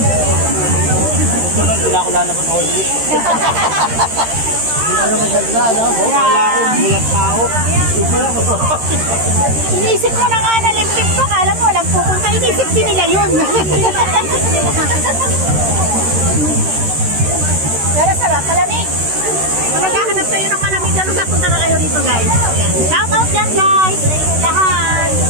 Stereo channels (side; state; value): left; late; 13 ms